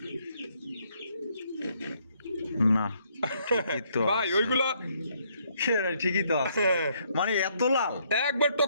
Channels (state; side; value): inverted; both; correlation -0.70